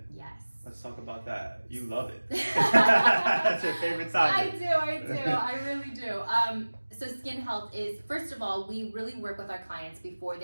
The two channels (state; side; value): inverted; both; correlation -1.00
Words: Yes. Let's talk about that. You love it. That's your favorite topic. I do. I really do. So skin health is, first of all, we really work with our clients before